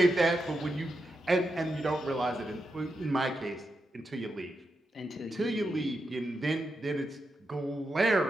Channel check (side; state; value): both; normal; correlation 0.86